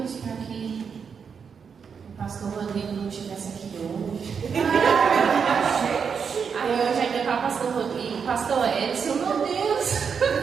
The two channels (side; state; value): left; quieter; 6.4 dB